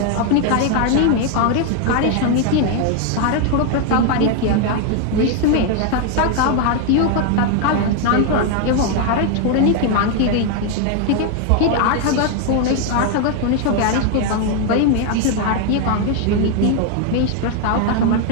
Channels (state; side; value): different; both; correlation 0.01